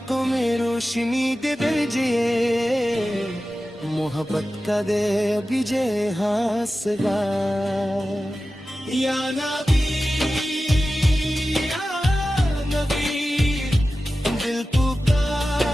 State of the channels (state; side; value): normal; both; correlation 0.94